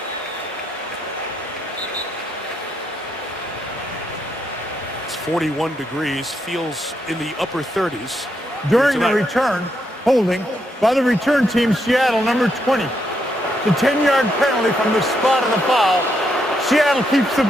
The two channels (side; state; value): both; normal; correlation 0.79